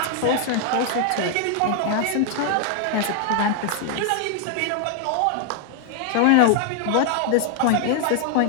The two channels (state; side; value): different; both; correlation 0.00